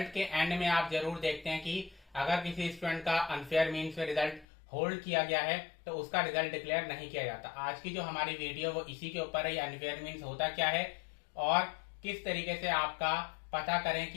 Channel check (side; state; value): right; drops out; at 4.5 s